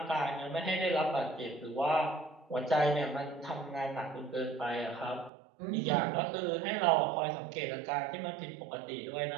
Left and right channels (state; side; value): drops out; left; at 5.3 s